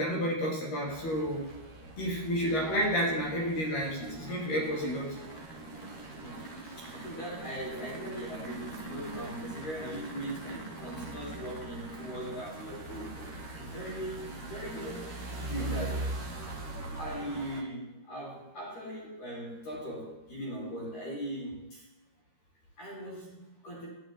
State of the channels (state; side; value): late; right; 13 ms